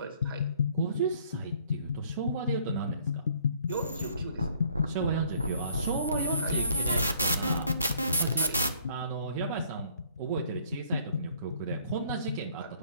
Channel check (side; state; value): both; inverted; correlation -0.60